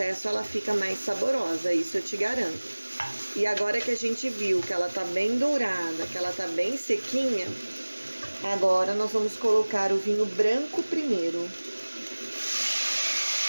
ela fica mais saborosa, isso eu te garanto. E agora que a gente viu que ela tá bem dourada, que ela tá bem sequinha, agora nós vamos colocar o vinho branco primeiro.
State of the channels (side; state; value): both; inverted; correlation -1.00